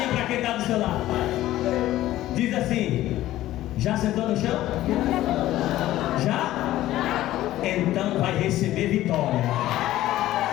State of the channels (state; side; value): quieter; right; 14.8 dB